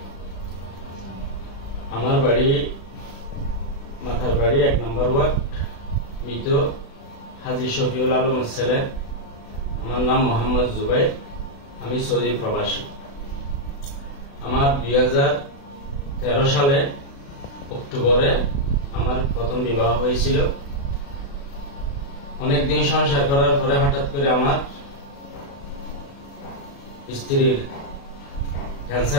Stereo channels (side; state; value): right; late; 36 ms